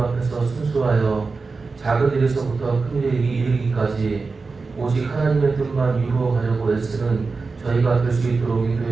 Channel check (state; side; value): quieter; left; 4.2 dB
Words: 순수하여 작은 일에서부터 큰 일에 이르기까지 오직 하나님의 뜻만 이루어가려고 애쓰는 저희가 될 수 있도록